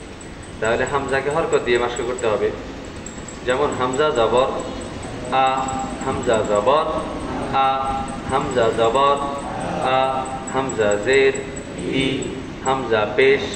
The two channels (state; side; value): identical; both; correlation 1.00